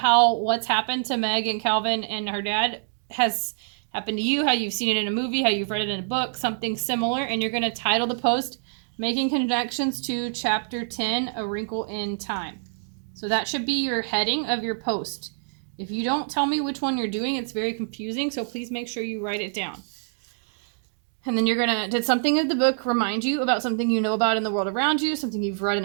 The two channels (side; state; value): left; silent; digital silence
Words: how what's happened to Meg and Calvin and her dad has happened to you, how you've seen it in a movie, how you've read it in a book, something similar, and you're going to title the post, Making Connections to Chapter 10, A Wrinkle in Time. So that should be your heading of your post. If you don't tell me which one you're doing, it's very confusing, so please make sure you write it down. And then you're going to, did something in the book remind you about something you know about in the world around you, something you've read in